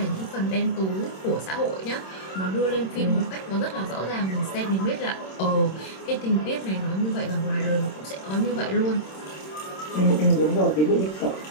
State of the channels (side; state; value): right; late; 26 ms